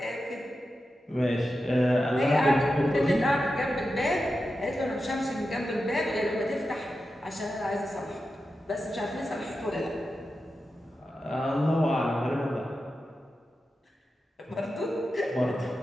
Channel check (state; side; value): normal; both; correlation 0.91